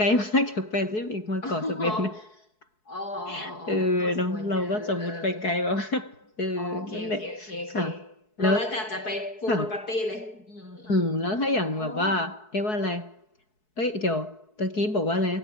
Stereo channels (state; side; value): late; right; 4.7 ms